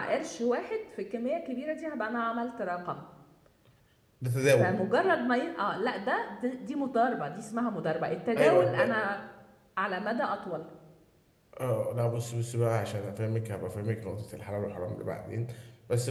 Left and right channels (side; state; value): both; identical; correlation 1.00